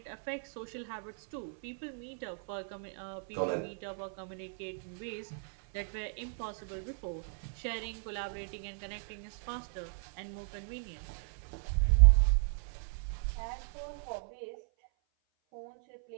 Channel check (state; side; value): silent; left; 54 dB below the other